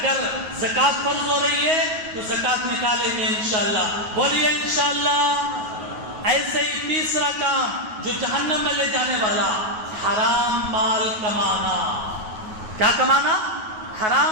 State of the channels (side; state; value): left; late; 9.4 ms